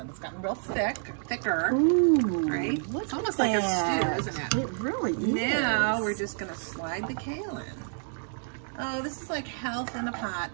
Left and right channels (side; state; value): left; silent; 59 dB below the other